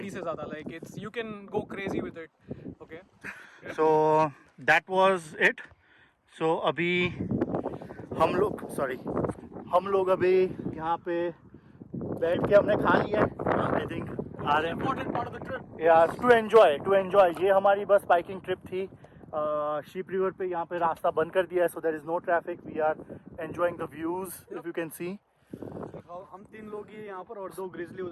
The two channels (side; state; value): both; identical; correlation 1.00